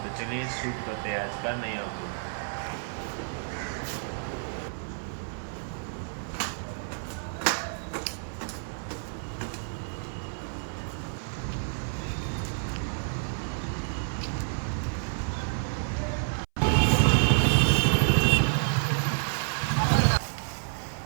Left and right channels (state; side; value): silent; left; 58 dB below the other